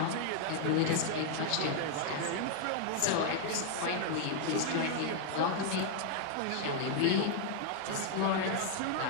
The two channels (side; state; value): both; different; correlation 0.00